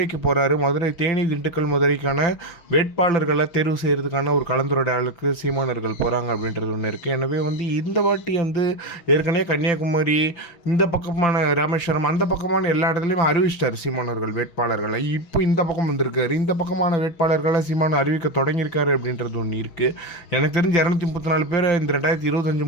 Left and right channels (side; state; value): right; late; 6.2 ms